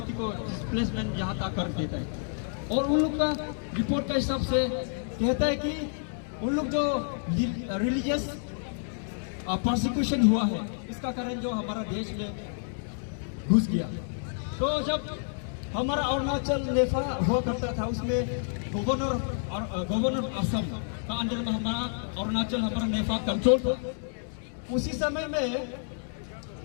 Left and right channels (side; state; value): right; silent; digital silence